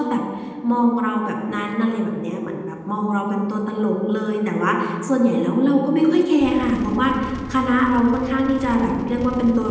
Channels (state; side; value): identical; both; correlation 1.00